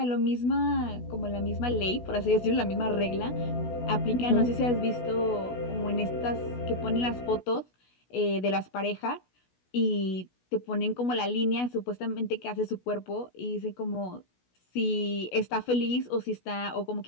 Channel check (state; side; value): late; right; 16 ms